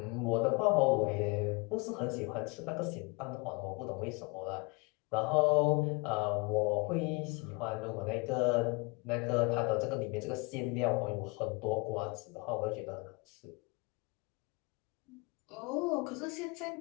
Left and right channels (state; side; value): quieter; right; 28.5 dB